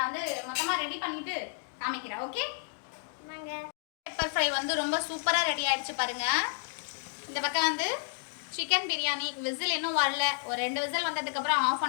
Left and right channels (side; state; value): right; silent; digital silence